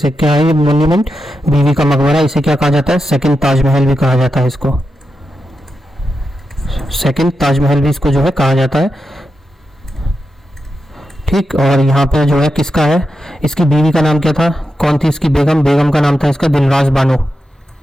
क्या है ये मॉन्यूमेंट, बीवी का मकबरा, इसे क्या कहा जाता है, सेकंड ताजमहल भी कहा जाता है इसको, सेकंड ताजमहल भी इसको जो है कहा जाता है। ठीक, और यहाँ पे जो है किसका है, इसकी बीवी का नाम क्या था, कौन थी इसकी बेगम, बेगम का नाम था इसका दिलरास बानो,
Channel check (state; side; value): normal; both; correlation 0.88